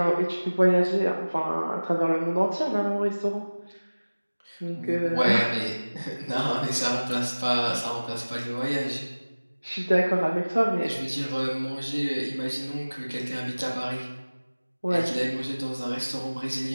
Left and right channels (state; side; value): inverted; both; correlation -1.00